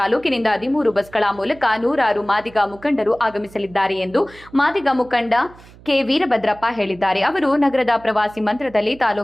13 ಬಸ್ಗಳ ಮೂಲಕ ನೂರಾರು ಮಾದಿಗ ಮುಖಂಡರು ಆಗಮಿಸಲಿದ್ದಾರೆ ಎಂದು ಮಾದಿಗ ಮುಖಂಡ ಕೆ ವೀರಭದ್ರಪ್ಪ ಹೇಳಿದ್ದಾರೆ. ಅವರು ನಗರದ ಪ್ರವಾಸಿ ಮಂದಿರದಲ್ಲಿ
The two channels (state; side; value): noise; right; hum, 23 dB below the sound